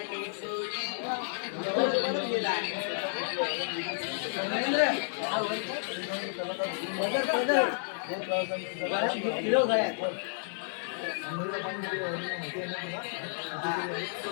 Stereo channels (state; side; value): silent; right; digital silence